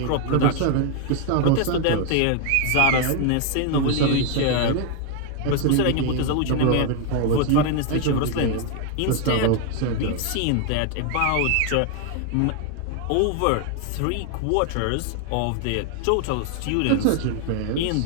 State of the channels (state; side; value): different; both; correlation 0.00